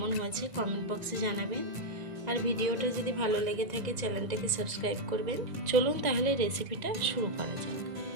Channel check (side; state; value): left; late; 2.0 ms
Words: হয়েছে কমেন্ট বক্সে জানাবেন। আর ভিডিওটা যদি ভালো লেগে থাকে চ্যানেলটাকে সাবস্ক্রাইব করবেন। চলুন তাহলে রেসিপিটা শুরু করা যাক।